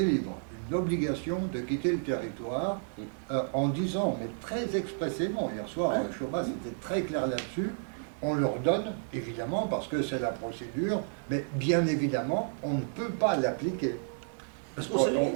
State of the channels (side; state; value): left; silent; digital silence